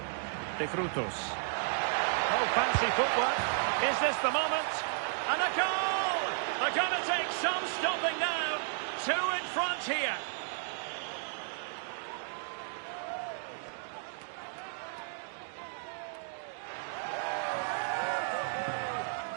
De Frutos. Oh, fancy footwork. Is this the moment? And a goal! They're going to take some stopping now. Two in front here.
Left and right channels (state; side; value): silent; left; digital silence